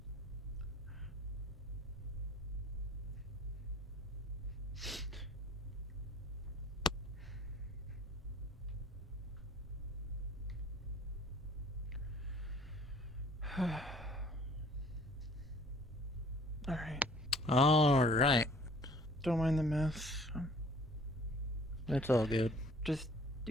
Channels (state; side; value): normal; both; correlation 0.53